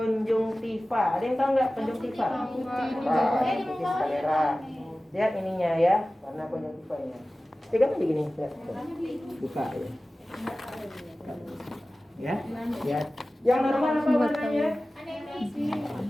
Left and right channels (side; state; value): both; normal; correlation 0.96